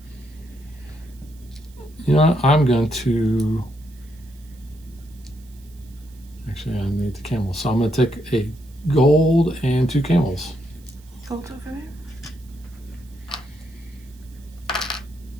you know, I'm going to, actually I need the camels. So I'm going to take a gold and 2 camels. Gold over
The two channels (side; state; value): right; noise; hiss, 28 dB below the sound